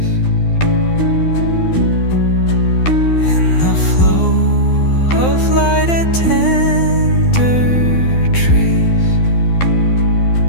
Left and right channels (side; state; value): right; late; 12 ms